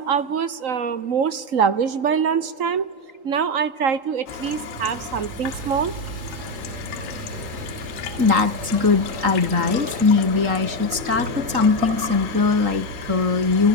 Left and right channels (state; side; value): late; left; 3.8 ms